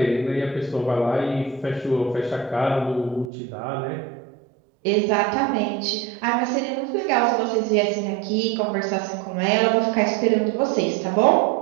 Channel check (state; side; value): drops out; left; at 3.2 s